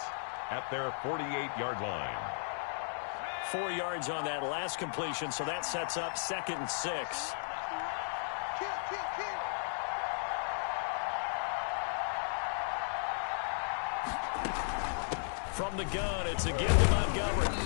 at their 48-yard line. 4 yards on that last completion, so that sets up 2nd and 6. From the gun, it's again to Montgomery.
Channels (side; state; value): right; silent; 54 dB below the other